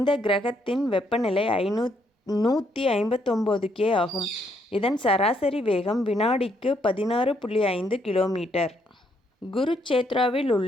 கிரகத்தின் வெப்பநிலை 159 K ஆகும். இதன் சராசரி வேகம் வினாடிக்கு 16.5 கிலோமீட்டர். குருச்சேத்ராவில்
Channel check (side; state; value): both; normal; correlation 0.72